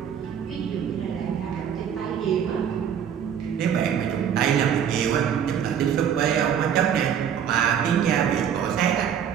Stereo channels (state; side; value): quieter; left; 8.5 dB